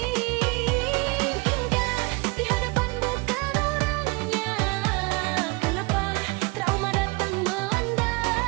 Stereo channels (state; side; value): quieter; left; 26.4 dB